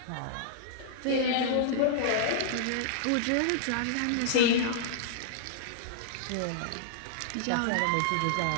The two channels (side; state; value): both; different; correlation -0.02